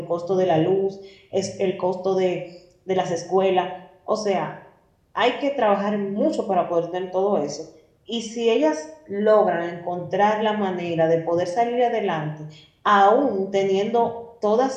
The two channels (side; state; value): both; identical; correlation 1.00